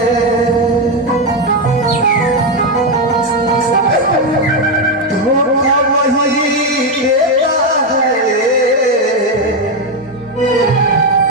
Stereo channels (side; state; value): both; normal; correlation 0.07